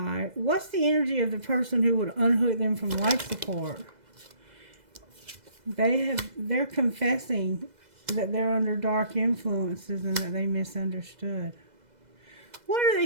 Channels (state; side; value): late; left; 2.0 ms